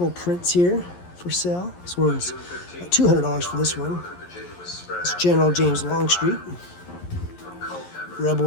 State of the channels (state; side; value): late; right; 11 ms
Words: prints here for sale. This one's $200 for this one. Virginia was spread It's out General James Longstreet. from Culpeper